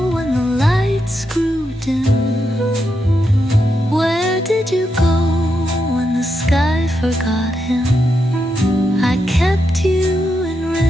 when the lights grew dim? Where did you go when the sky forgot him? I kept you in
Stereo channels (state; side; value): normal; both; correlation 0.83